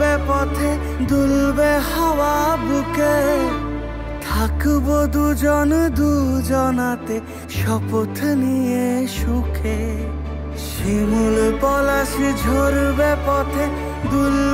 পথে দুলবে হাওয়া বুকে, থাকবো দুজন দুজনাতে শপথ নিয়ে সুখে। শিমুল পলাশ ঝরবে পথে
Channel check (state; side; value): identical; both; correlation 1.00